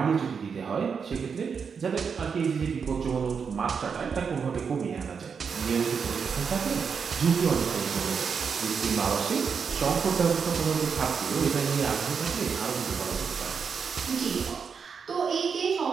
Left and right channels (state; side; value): quieter; left; 6.1 dB